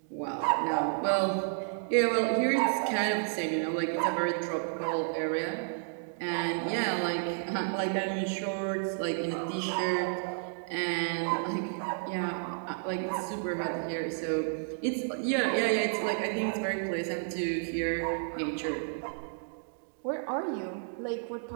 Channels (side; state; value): left; silent; digital silence